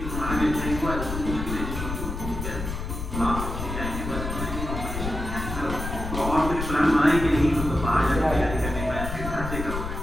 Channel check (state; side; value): noise; left; rumble, 5 dB below the sound